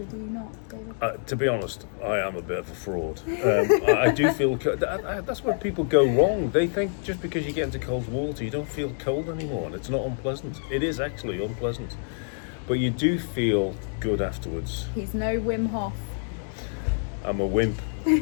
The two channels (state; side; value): silent; right; 60 dB below the other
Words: do you not, David? To be honest, I am a bit of a fraud. I do feel that's where people go wrong. They think just because you get into cold water, you don't feel cold anymore, and it's not unpleasant. It is actually unpleasant, but you do feel good afterwards. He's no Wim Hof. I'm a wimp.